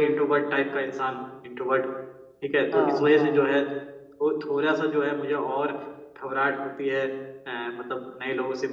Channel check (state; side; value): identical; both; correlation 1.00